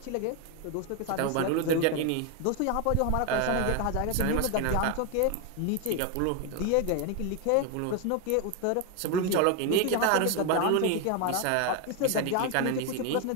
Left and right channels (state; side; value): different; both; correlation 0.01